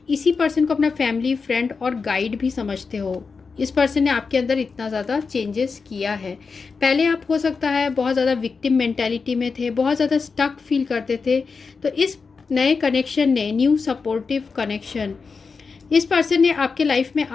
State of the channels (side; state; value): right; quieter; 4.9 dB